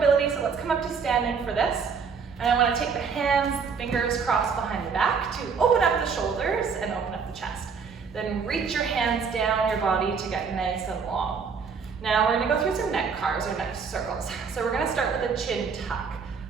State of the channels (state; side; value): quieter; left; 5.8 dB